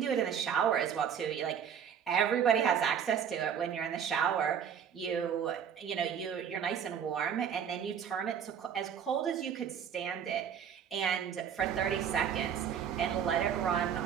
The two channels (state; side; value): quieter; left; 8.0 dB